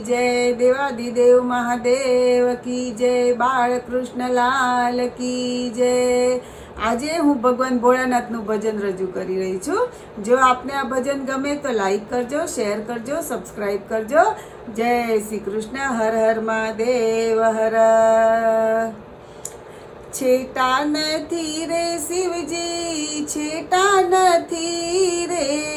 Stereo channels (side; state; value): both; identical; correlation 1.00